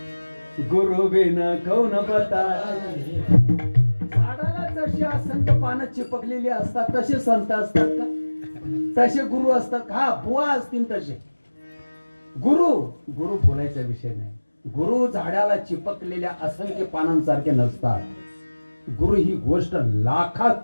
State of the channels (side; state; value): both; inverted; correlation -1.00